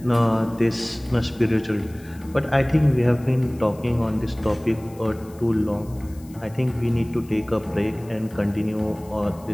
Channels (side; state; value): left; noise; hiss, 25 dB below the sound